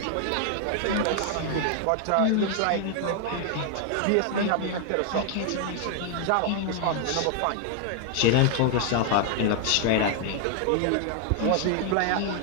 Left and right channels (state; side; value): different; both; correlation 0.00